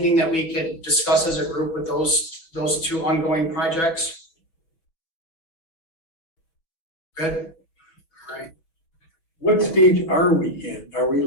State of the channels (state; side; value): late; right; 6.0 ms